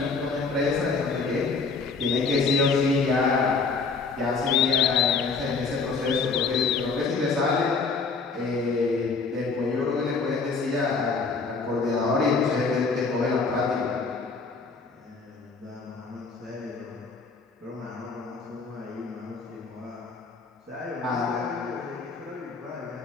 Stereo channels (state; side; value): quieter; right; 4.5 dB